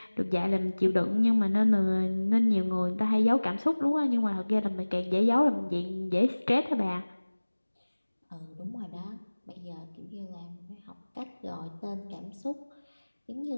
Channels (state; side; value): inverted; both; correlation -1.00